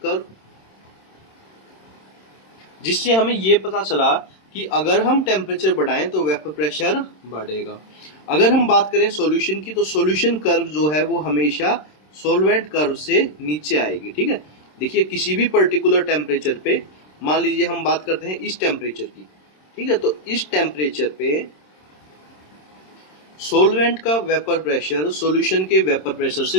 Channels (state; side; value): late; right; 26 ms